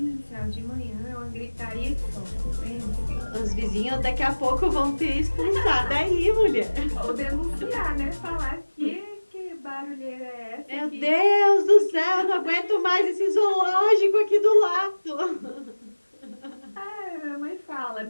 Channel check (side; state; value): both; inverted; correlation -1.00